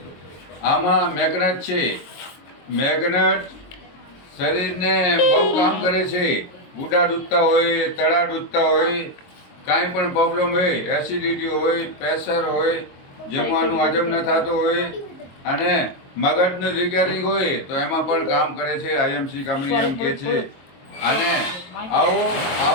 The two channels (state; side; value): late; right; 22 ms